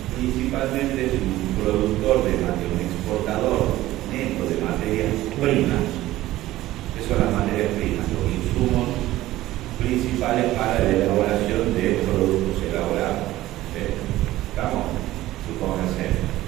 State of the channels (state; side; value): quieter; left; 15.9 dB